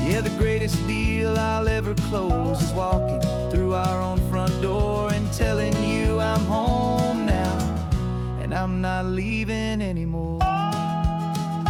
Yeah, the greatest deal I'll ever close is walking through our own front door and telling you I'm home now, and I'm not leaving anymore.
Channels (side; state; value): both; identical; correlation 1.00